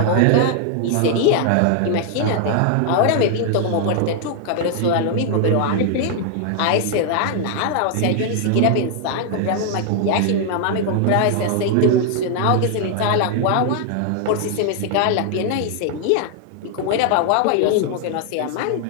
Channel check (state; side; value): different; both; correlation 0.00